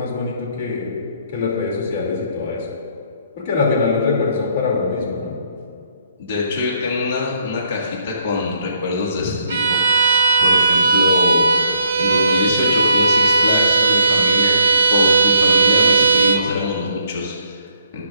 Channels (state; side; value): inverted; both; correlation -0.68